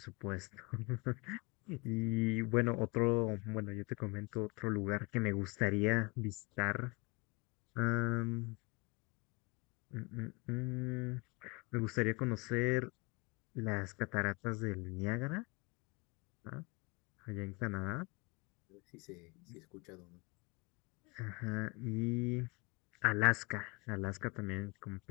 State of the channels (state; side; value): quieter; right; 27.0 dB